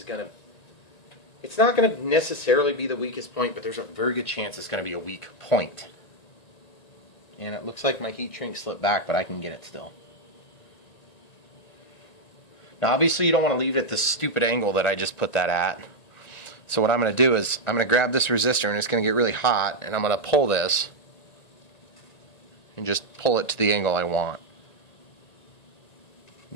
going to, it's not going to necessarily be the weakest point, but there's a very good chance it's going to be a weak point. And it looks like my heat shrink slipped back, but I can get it still. Now obviously you don't want to leave it at this stupid angle that I just put that at. So what I'm going to do is I'm going to grab this resistor, and it's going to get really hot, and I'm going to pull this and just pull it to the angle I want.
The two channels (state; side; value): late; right; 1.9 ms